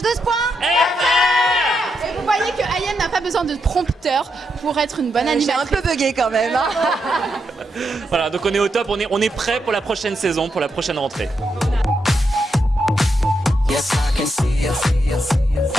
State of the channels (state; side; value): normal; both; correlation 0.82